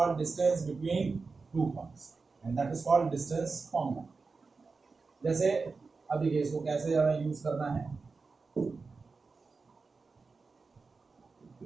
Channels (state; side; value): quieter; left; 4.3 dB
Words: distance between two points and that is called distance formula. जैसे अब देखिए इसको कैसे हमें यूज करना है।